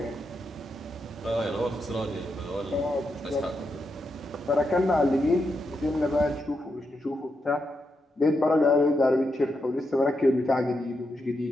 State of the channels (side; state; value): both; normal; correlation 0.84